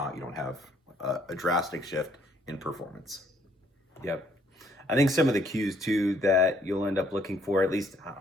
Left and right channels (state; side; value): normal; both; correlation 0.66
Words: You don't have a drastic shift in performance. Yep. I think some of the cues too that you'll end up looking for, at least,